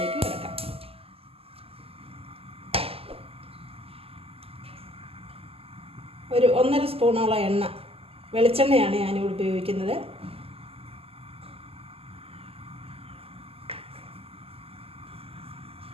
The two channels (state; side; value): late; left; 0.28 ms